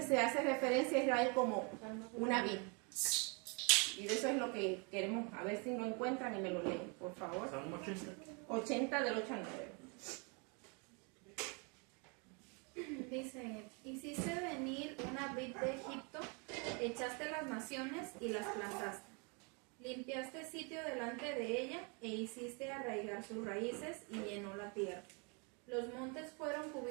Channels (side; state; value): left; quieter; 33.8 dB